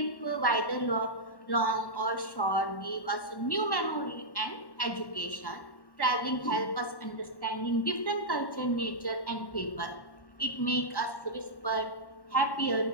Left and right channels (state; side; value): late; right; 1.1 ms